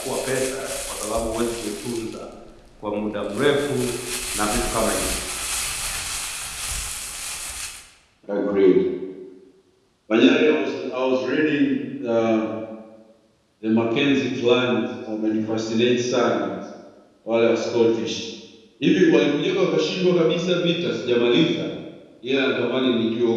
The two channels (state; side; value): identical; both; correlation 1.00